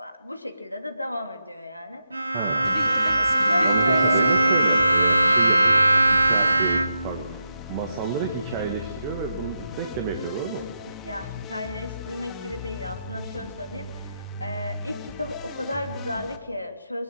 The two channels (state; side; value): inverted; both; correlation -0.85